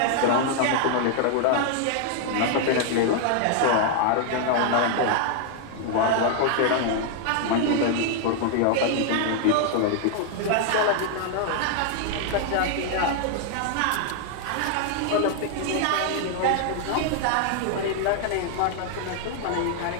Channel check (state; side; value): different; both; correlation 0.00